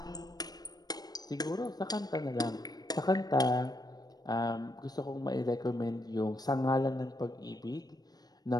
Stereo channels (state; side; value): late; right; 0.19 ms